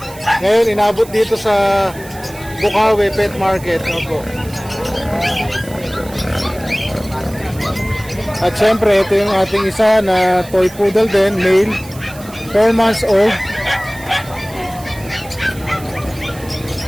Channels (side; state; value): right; noise; hiss, 19 dB below the sound